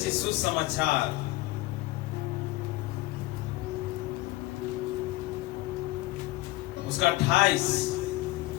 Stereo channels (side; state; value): right; quieter; 18.8 dB